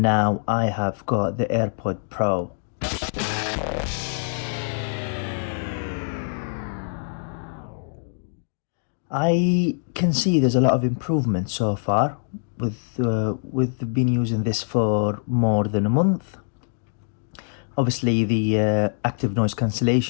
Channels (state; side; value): silent; right; digital silence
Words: now I have got the AirPod Pro. I can see there's a lot of improvement so far with been using this for more than a month. Obviously the active noise